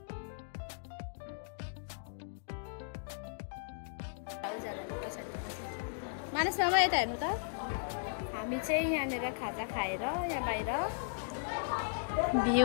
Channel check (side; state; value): right; silent; digital silence